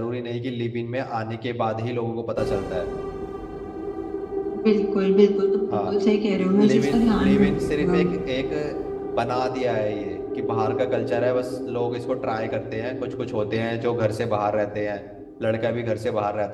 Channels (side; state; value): both; identical; correlation 1.00